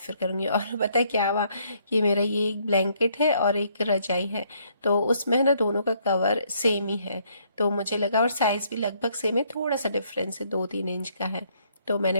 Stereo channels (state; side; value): inverted; both; correlation -0.69